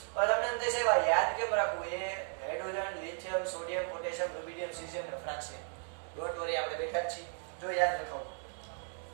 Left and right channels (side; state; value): left; silent; 54 dB below the other